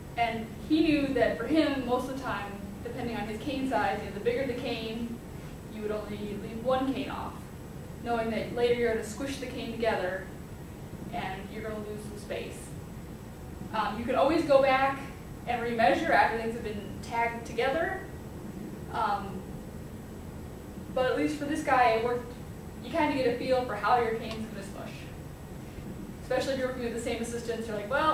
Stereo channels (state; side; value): identical; both; correlation 1.00